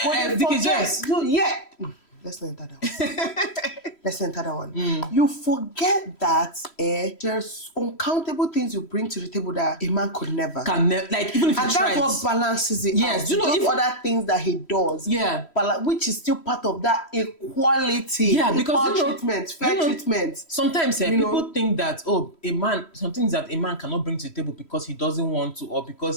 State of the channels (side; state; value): right; late; 3.1 ms